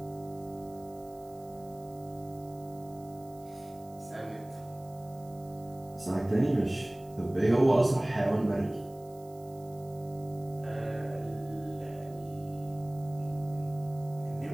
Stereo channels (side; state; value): right; noise; hiss, 25 dB below the sound